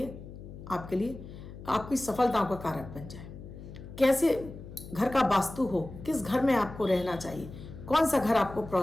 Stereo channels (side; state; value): left; noise; hum, 14 dB below the sound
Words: आपकी सफलताओं का कारक बन जाए। कैसे घर का वास्तु हो, किस घर में आपको रहना चाहिए, कौन सा घर आपको